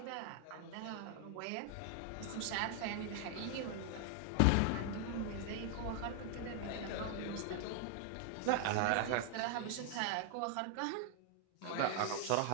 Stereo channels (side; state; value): both; different; correlation 0.00